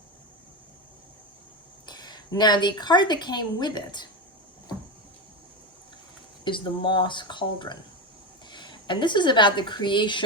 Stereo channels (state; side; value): normal; both; correlation 0.16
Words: Now, the card that came with it is the Moss Cauldron. And this is about the